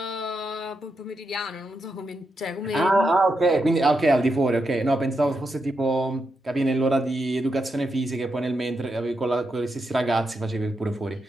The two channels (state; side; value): normal; both; correlation 0.84